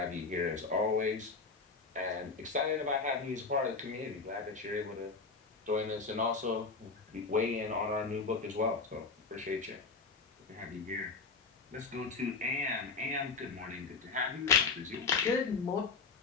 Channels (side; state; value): right; quieter; 4.5 dB